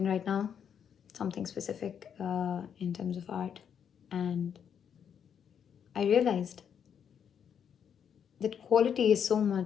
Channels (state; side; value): quieter; right; 8.0 dB